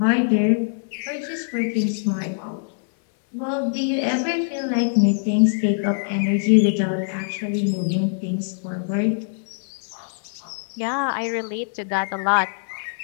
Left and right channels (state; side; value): silent; right; 61 dB below the other